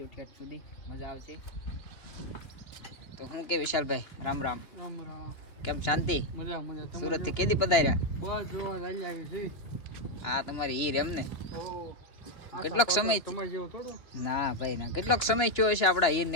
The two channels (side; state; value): right; late; 2.9 ms